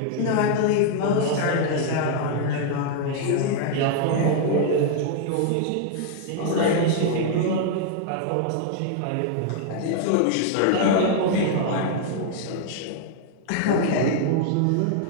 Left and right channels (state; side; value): different; both; correlation 0.00